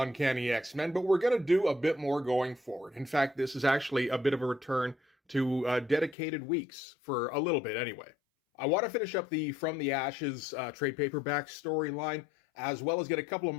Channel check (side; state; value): right; drops out; at 6.2 s